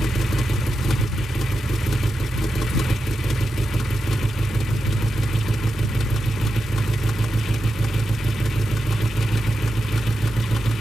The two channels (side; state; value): both; normal; correlation 0.89